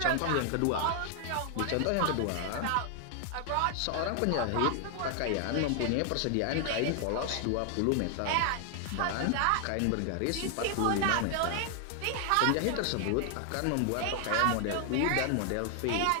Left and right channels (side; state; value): both; different; correlation 0.00